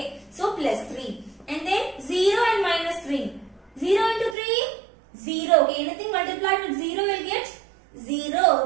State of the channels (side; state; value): left; drops out; at 4.4 s